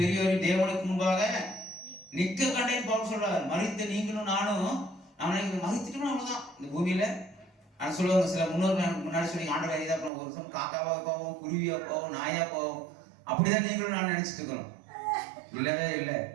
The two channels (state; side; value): drops out; left; at 10.1 s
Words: பெரியோரையும் தேவனுக்கு முன்பாக நிற்க கண்டேன் பவுல் சொல்றாரு. மரித்த நீங்களும் நானும் மரித்துட்டோம்னா அவ்வளவுதான் இந்த பூமியில. நான் சொல்லுவாங்க, சில முன்னாடி சொல்லி ஆண்டவர் இதாக போவோம், ஒரு சமயம் காக்காவா போவோம், குருவியா போவோம், நாயா போவோம். அப்படிதான் நீங்களும் நான் நினைச்சிட்டு இருக்கிறோம். இல்லவே இல்லை.